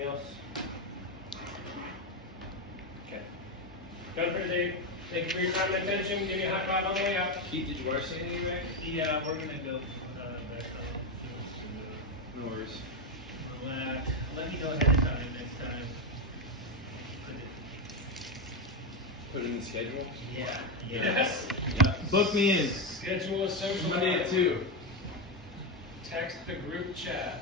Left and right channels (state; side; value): normal; both; correlation 0.09